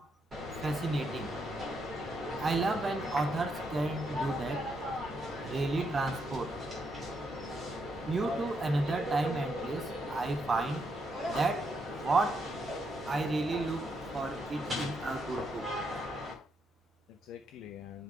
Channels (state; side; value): normal; both; correlation 0.79